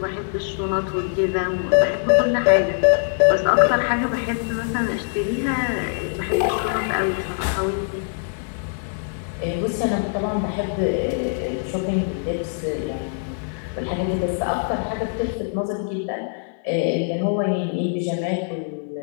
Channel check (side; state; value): right; silent; 57 dB below the other